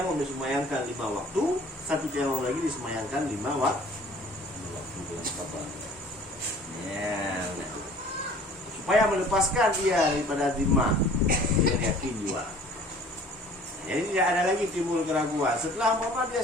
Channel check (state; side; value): normal; both; correlation 0.50